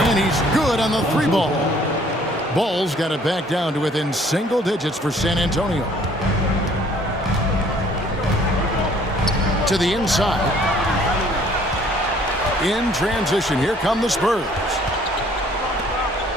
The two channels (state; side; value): normal; both; correlation 0.58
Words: he's good on the 3 ball. Ball's got it back down to within single digits for San Antonio. To the inside. In transition, here come the Spurs.